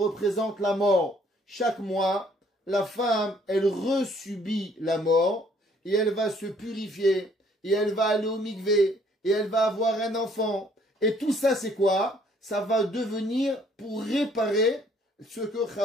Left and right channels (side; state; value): both; normal; correlation 0.62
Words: la mort. Chaque mois, la femme, elle resubit la mort et elle va se purifier et elle va aller au mikvé et elle va avoir un enfant. Et tout ça, c'est quoi? Ça va devenir pour réparer ce que